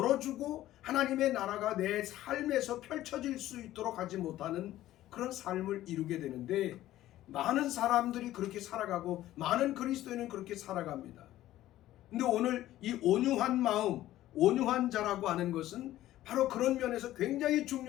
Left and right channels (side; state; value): right; quieter; 14.3 dB